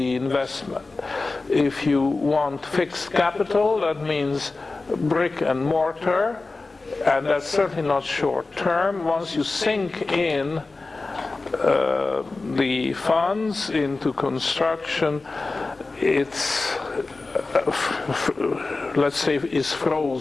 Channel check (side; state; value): right; quieter; 3.6 dB